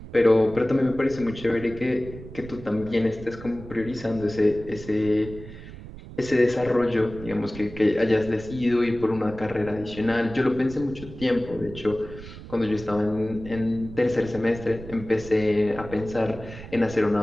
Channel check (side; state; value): right; noise; rumble, 14 dB below the sound